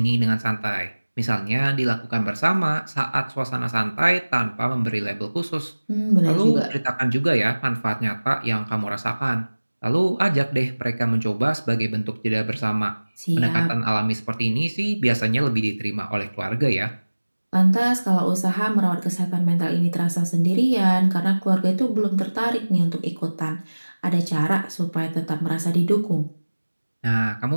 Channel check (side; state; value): both; inverted; correlation -1.00